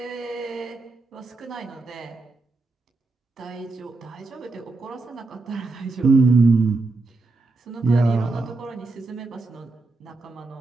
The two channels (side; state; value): left; quieter; 3.4 dB